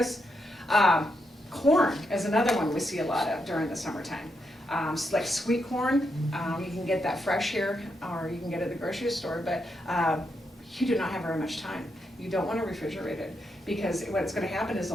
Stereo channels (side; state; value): both; normal; correlation 0.82